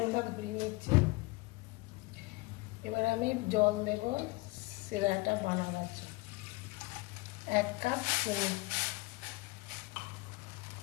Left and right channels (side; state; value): right; quieter; 23.1 dB